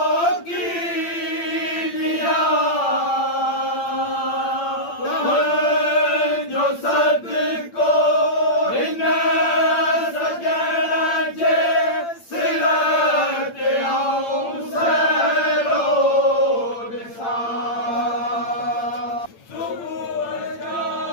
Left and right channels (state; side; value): late; right; 8.8 ms